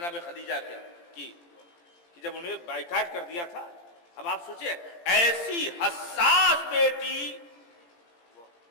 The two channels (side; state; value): right; late; 17 ms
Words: خدیجہ کی کہ جب انہیں بائیکاٹ کر دیا تھا. اب آپ سوچیں ایسی حساس بیٹی